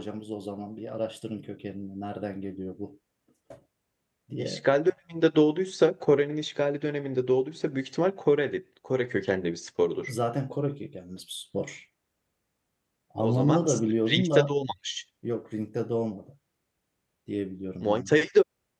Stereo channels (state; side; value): identical; both; correlation 1.00